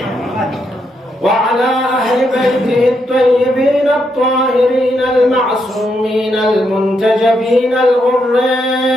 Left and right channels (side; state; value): both; normal; correlation 0.79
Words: وعلى أهل بيته الطيبين الطاهرين المعصومين المنتجبين الغر